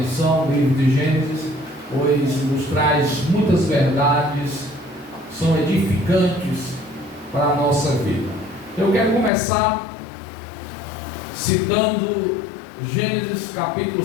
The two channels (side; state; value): right; drops out; at 9.3 s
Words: o livro de Gênesis, pois nos traz muitas verdades, são edificantes para a nossa vida. Eu quero começar citando Gênesis capítulo